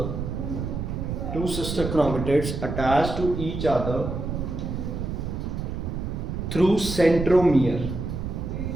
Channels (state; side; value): noise; right; rumble, 4 dB below the sound